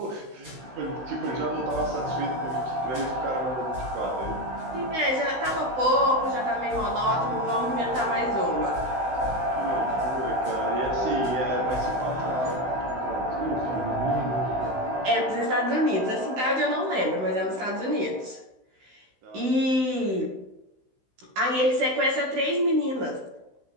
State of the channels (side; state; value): left; late; 16 ms